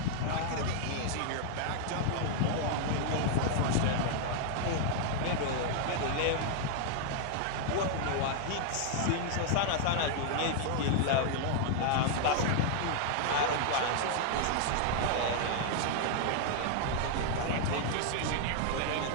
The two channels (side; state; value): both; different; correlation 0.00